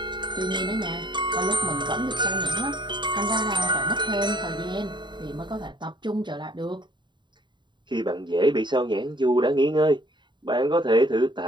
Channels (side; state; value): left; late; 0.22 ms